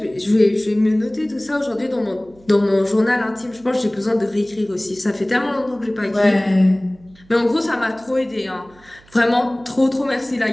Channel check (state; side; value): noise; right; hum, 28 dB below the sound